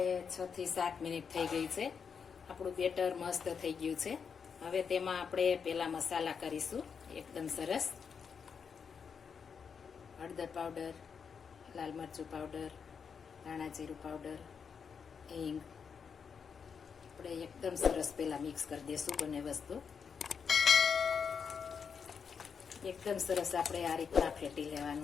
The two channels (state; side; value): quieter; right; 6.4 dB